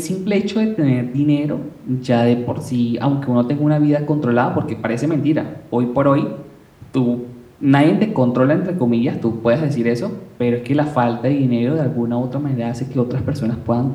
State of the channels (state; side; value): identical; both; correlation 1.00